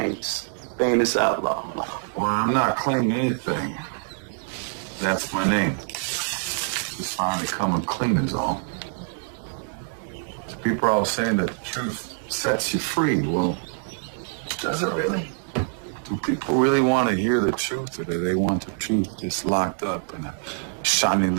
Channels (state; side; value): silent; left; 62 dB below the other